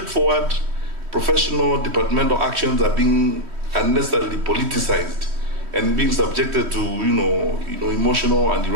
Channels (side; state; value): left; late; 3.1 ms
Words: professional departmental actions are being unnecessarily politicized and being subjected to emotional and